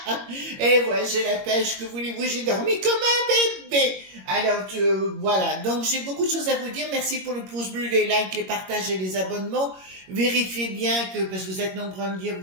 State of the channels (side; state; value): left; late; 21 ms